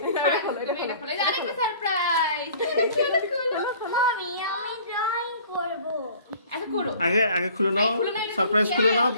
এটা খোলো, এটা তুমি এটা খোলো। খোলো। এই যে আরেকটা সারপ্রাইজ। মামি আমি ড্রয়িং করব। আচ্ছা করো। আগে আগে খুলে নাও, খুলে নাও, এটা সারপ্রাইজ তুমি খুলে নাও, খেয়াল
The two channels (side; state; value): both; inverted; correlation -0.50